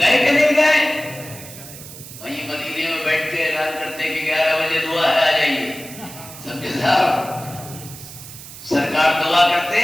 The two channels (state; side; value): noise; right; hiss, 15 dB below the sound